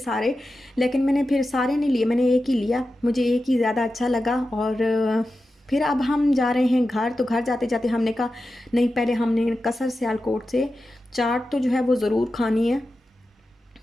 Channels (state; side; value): normal; both; correlation 0.92